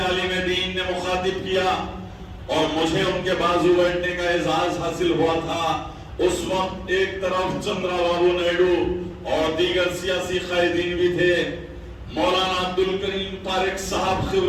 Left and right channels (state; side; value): identical; both; correlation 1.00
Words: دین نے مخاطب کیا، اور مجھے ان کے بازو بیٹھنے کا اعزاز حاصل ہوا تھا۔ اس وقت ایک طرف چندرا بابو نائیڈو اور دیگر سیاسی قائدین بھی تھے۔ مولانا عبدالکریم پارک صاحب